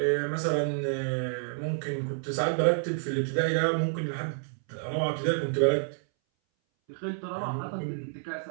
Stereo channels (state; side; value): silent; left; 58 dB below the other